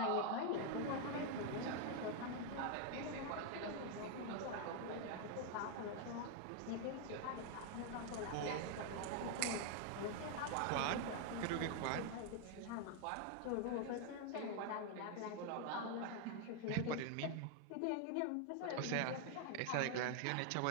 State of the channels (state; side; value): different; both; correlation 0.00